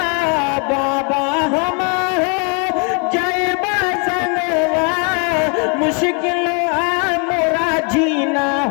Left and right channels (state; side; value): quieter; right; 36.6 dB